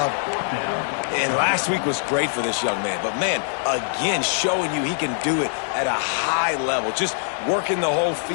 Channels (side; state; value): right; silent; digital silence